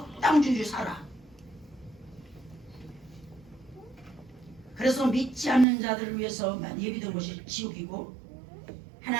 살아. 그래서 믿지 않는 자들을 위해서만 예비된 것이 지옥이고,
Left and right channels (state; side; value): drops out; left; at 5.7 s